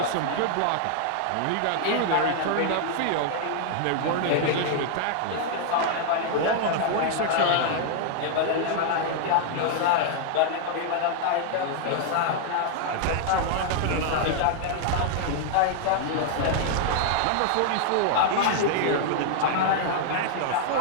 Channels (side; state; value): both; different; correlation 0.00